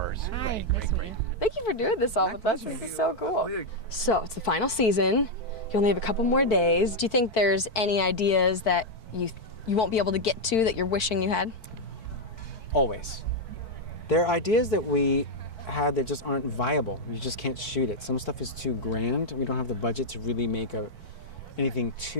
Hi. Great. Thank you for doing this all with us. This is so cool. So it's the final season. You only have a couple more days. Do you think there's any ideas that you won't be able to get to that you're wishing you had? Always. There are ideas that we had that just aren't viable. You just can't shoot it. Some stuff is too grand. We don't have the budget to really make anything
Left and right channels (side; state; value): right; late; 4.5 ms